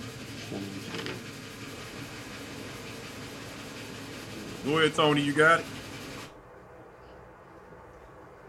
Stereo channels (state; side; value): identical; both; correlation 1.00